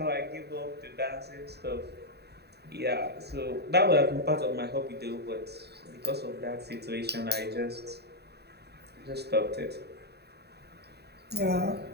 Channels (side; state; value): left; late; 0.48 ms